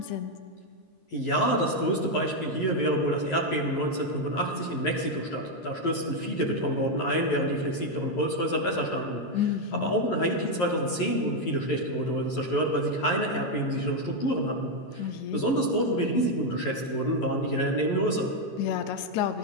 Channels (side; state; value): right; late; 11 ms